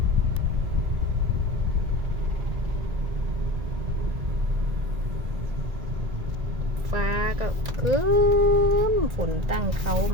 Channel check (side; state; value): left; late; 1.9 ms